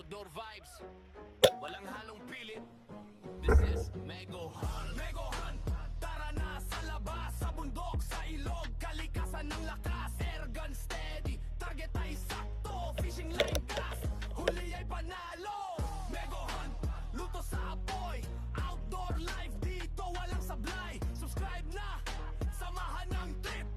vibes, walang halong pilit. This is Mego Hunt. Mego Hunt, tara na sa labas, sa bundok, sa ilog, kalikasan ng lakas. Airgun steady, target ay sakto, fishing line cast, huli ay panalo. Mego Hunt, luto sa apoy, outdoor life dito walang sablay. Subscribe na, samahan ng trip.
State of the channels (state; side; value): identical; both; correlation 1.00